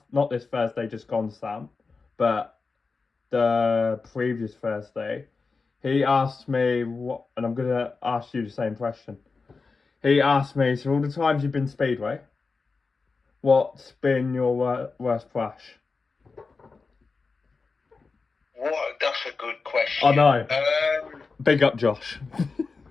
this Thursday, just gone, Sam, but the previous Thursday, he asked me what, and I'm going to ask you the same question. He asked me, so all the times you've been Speedway, what's been your worst crash? What? That's a good question. I know. Big up, Josh.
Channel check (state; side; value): quieter; right; 4.4 dB